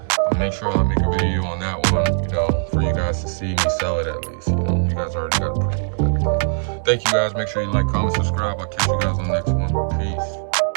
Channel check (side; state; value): left; silent; digital silence